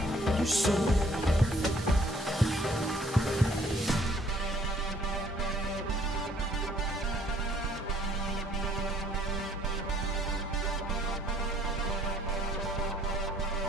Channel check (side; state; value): both; normal; correlation 0.61